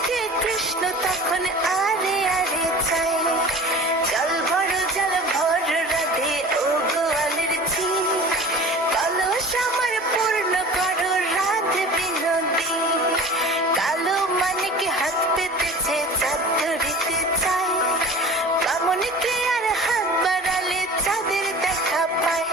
কৃষ্ণ তখন আরে আরে চায়। জল ভর রাধে ও গোয়ালের ঝি, কলস আমার পূর্ণ করো রাধে বিনোদী। কালো মানিকে হাত পেতেছে চাঁদ ধরিতে চায়, বামনকে আর হাত বাড়ালে চাঁদের দেখা পায়।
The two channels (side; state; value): both; normal; correlation 0.39